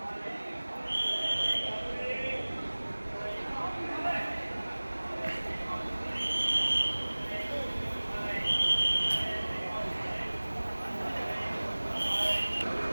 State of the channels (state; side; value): inverted; both; correlation -1.00